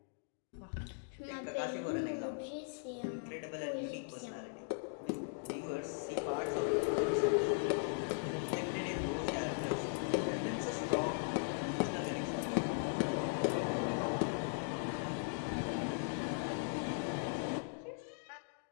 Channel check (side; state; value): right; silent; digital silence